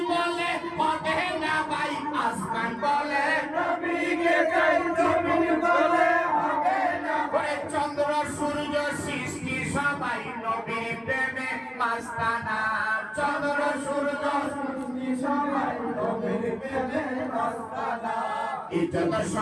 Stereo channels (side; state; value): both; identical; correlation 1.00